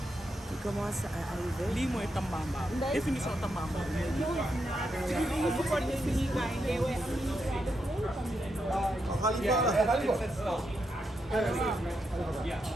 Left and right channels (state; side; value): normal; both; correlation 0.83